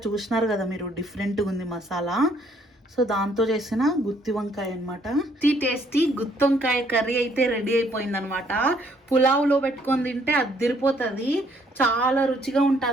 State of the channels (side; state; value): both; normal; correlation 0.66